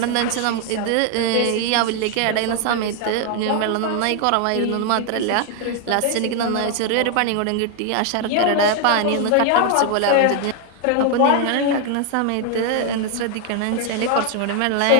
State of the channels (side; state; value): both; different; correlation 0.00